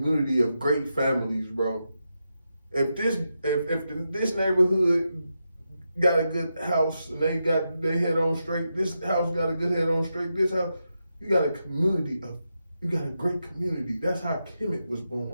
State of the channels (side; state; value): both; inverted; correlation -0.86